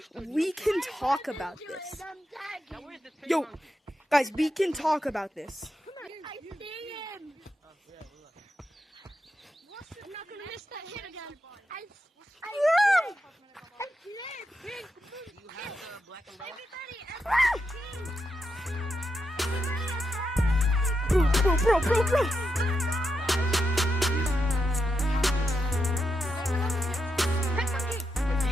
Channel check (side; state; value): both; normal; correlation 0.85